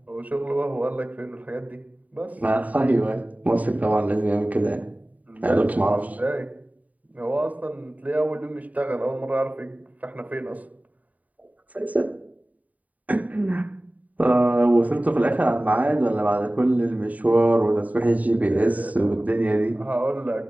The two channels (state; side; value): late; left; 0.072 ms